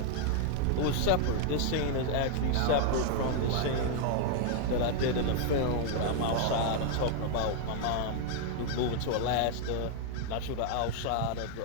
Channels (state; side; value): different; both; correlation 0.00